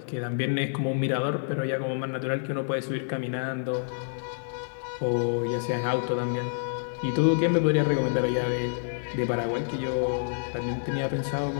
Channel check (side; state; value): right; silent; 59 dB below the other